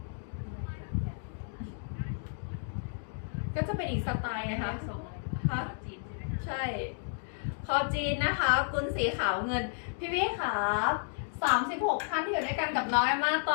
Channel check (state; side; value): silent; right; digital silence